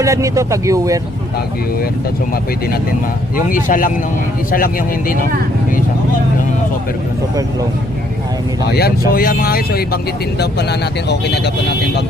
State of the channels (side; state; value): both; normal; correlation 0.67